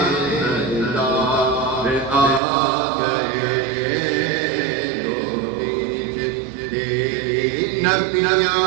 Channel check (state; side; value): drops out; left; at 2.4 s